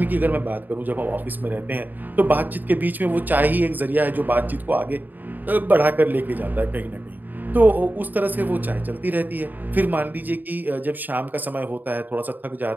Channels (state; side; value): late; left; 0.087 ms